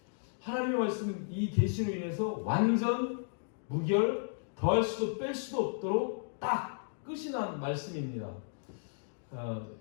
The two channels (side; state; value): right; silent; digital silence